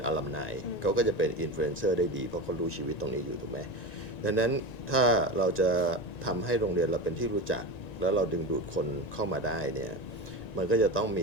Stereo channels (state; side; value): late; right; 1.9 ms